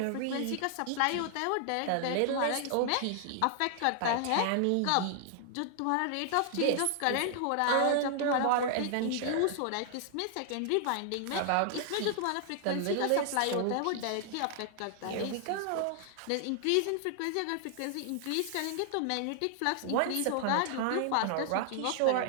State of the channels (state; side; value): different; both; correlation 0.00